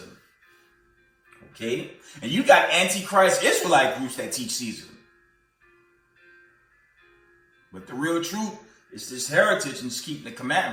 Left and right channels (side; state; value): both; identical; correlation 1.00